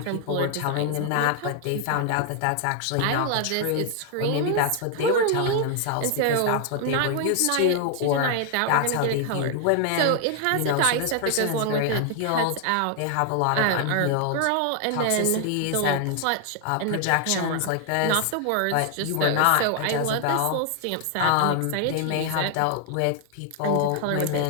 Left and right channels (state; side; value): different; both; correlation 0.00